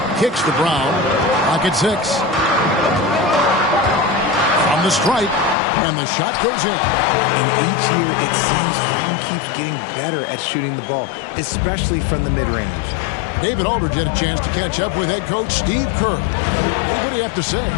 Kicks to Brown. Pocket 6. From the stripe. And the shot goes in. And each year it seems Brown keeps getting better at shooting the ball, especially from the mid-range. David Aldridge had a chance to catch up with head coach Steve Kerr. What do you have to say?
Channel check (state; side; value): drops out; right; at 5.6 s